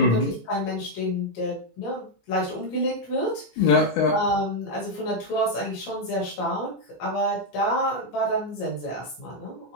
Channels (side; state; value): right; late; 18 ms